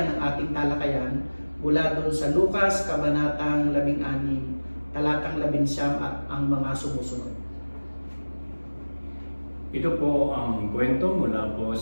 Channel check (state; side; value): inverted; both; correlation -1.00